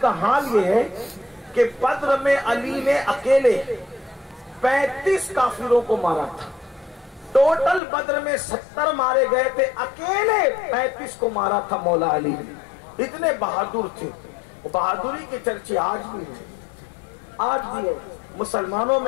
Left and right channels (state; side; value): drops out; right; at 7.8 s